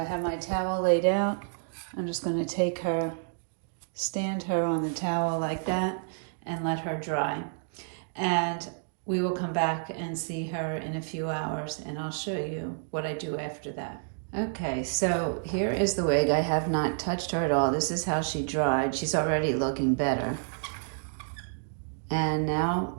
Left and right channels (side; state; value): left; silent; digital silence